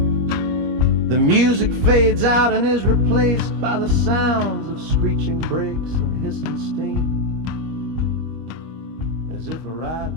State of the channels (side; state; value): left; late; 25 ms